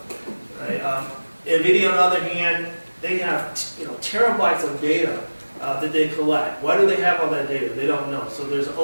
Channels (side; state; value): both; inverted; correlation -1.00